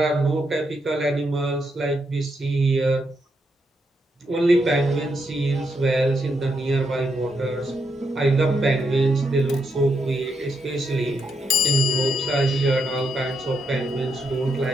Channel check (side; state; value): both; normal; correlation 0.81